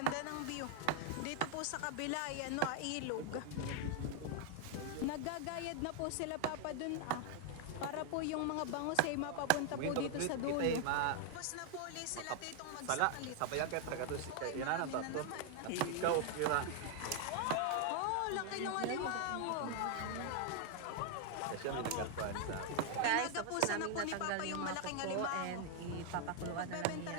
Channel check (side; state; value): both; different; correlation 0.00